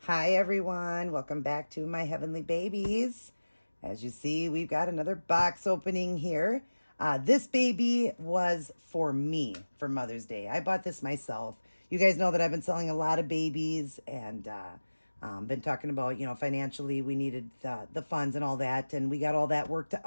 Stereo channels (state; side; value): inverted; both; correlation -1.00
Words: Hi everyone, welcome back to my heavenly babies. As you see, we've got another box opening here. This baby was for me for Mother's Day. I bought this myself. You guys know that I've been selling a lot of babies and been talking about, financially we needed the funds and all that, and we got all that worked